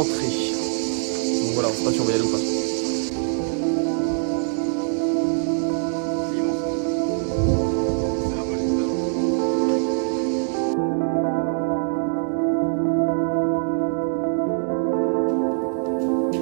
Donc voilà, on sait pas si on va y aller ou pas.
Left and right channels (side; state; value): left; silent; 63 dB below the other